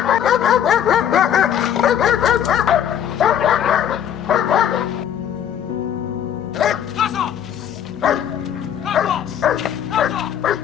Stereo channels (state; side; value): quieter; right; 9.5 dB